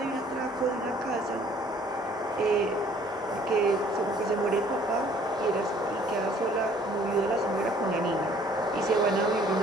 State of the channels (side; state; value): both; normal; correlation 0.57